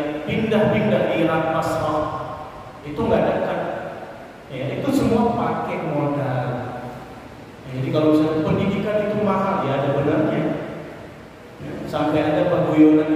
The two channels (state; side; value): identical; both; correlation 1.00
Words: pindah-pindah Irak, Basrah, itu nggak dekat. Ya, itu semua pakai modal. Ya, jadi kalau misalnya pendidikan itu mahal, ya ada benarnya. Ya, sampai ada